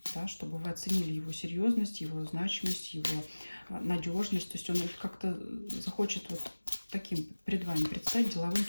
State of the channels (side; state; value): both; inverted; correlation -1.00